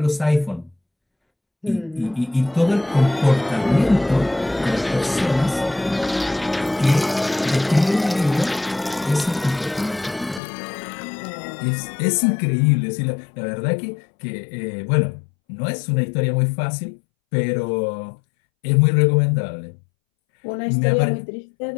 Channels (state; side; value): drops out; right; at 10.4 s